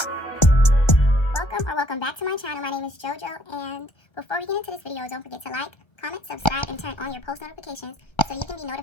Welcome back to my channel. My name is JoJo, and before we get into this video, don't forget to like, comment, subscribe, and turn on your post notifications so you can be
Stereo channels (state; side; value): late; right; 1.3 ms